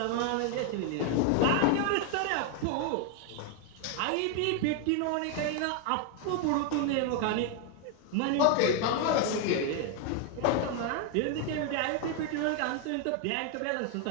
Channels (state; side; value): different; both; correlation 0.01